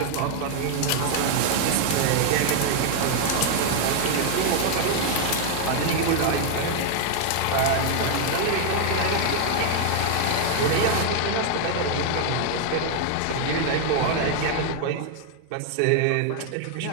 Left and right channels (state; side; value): different; both; correlation 0.00